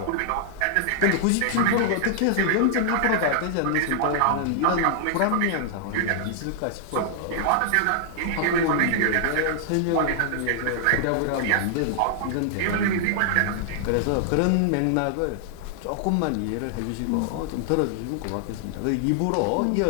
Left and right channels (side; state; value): both; different; correlation -0.01